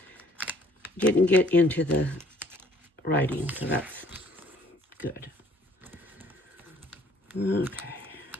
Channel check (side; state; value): both; normal; correlation 0.60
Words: didn't get into the writing, so that's good.